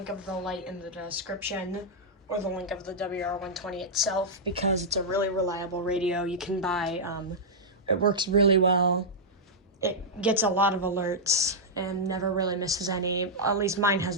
of the light in the description or the link of the WR120 itself because it's a really reliable radio you can buy. It works really well. It gets a lot of alerts and never really misses any. At least mine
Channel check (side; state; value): both; normal; correlation -0.09